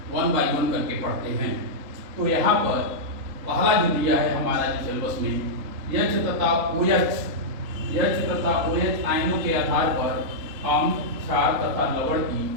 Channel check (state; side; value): late; left; 3.8 ms